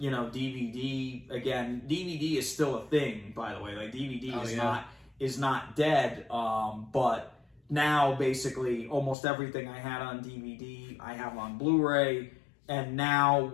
DVD, again, DVD is still a thing, by the way. Like, DVD is not dead, but now basically almost everything I had on DVD, I have on Blu-ray, and now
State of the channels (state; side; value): drops out; right; at 9.2 s